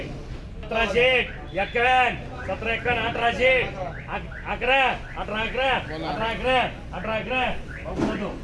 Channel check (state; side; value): identical; both; correlation 1.00